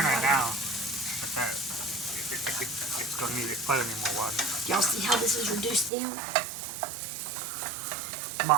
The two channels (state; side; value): drops out; left; at 5.9 s